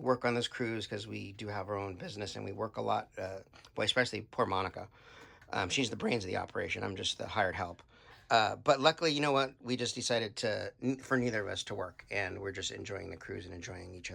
on this cruise because we do have our own business and we work a lot. Boy, especially poor Monica. She's the brains of the operation. I'm just the hired help. But luckily, you know what? We just decided for neither of us to work. And we're just enjoying the cruise and enjoying each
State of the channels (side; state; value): both; identical; correlation 1.00